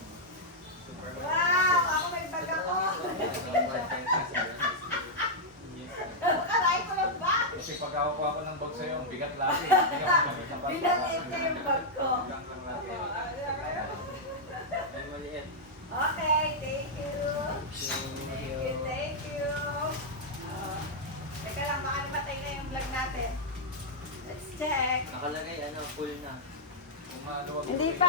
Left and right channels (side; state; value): both; normal; correlation -0.06